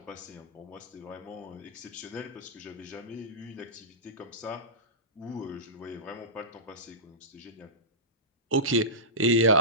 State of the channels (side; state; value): both; normal; correlation -0.19